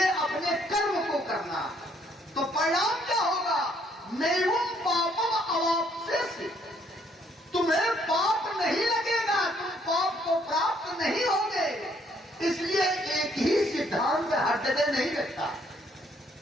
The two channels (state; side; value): normal; both; correlation 0.67